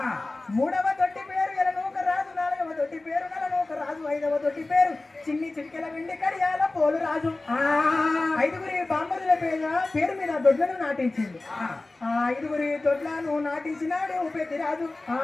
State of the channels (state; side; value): quieter; right; 3.1 dB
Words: మూడవ దొడ్డి పేరు ఎలనూక రాజు, నాలుగవ దొడ్డి పేరు నలనూక రాజు, 5వ దొడ్డి పేరు చిన్ని చిటికెల వెండి కడియాల పోలు రాజు. 5గురి బామ్మర్దుల పేరు మీద దొడ్లను నాటించింది. ఆ 5గురి దొడ్లను నాటించినాడు పెద్దిరాజు.